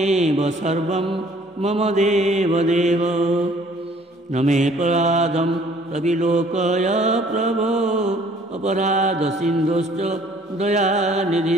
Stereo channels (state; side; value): normal; both; correlation 0.57